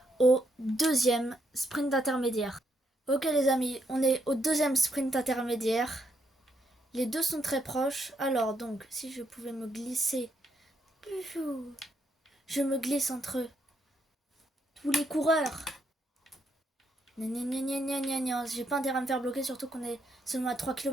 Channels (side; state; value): both; normal; correlation 0.76